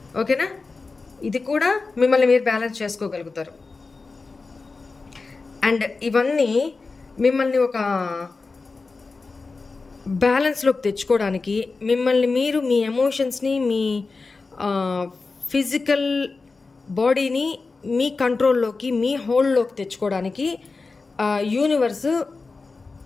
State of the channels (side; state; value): right; quieter; 4.0 dB